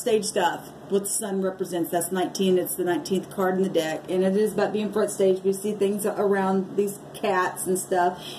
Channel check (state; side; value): identical; both; correlation 1.00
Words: stuff. What the sun represents. That's 19. It's the 19th card in the deck, and it is about being front stage. We see things around these cats and stuff.